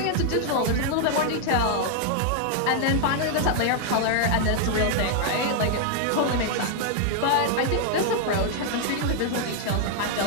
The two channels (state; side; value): different; both; correlation 0.00